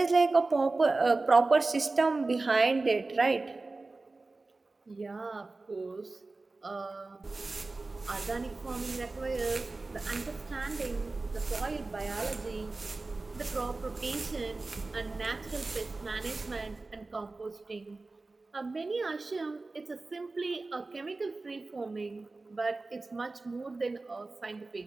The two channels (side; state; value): left; quieter; 3.4 dB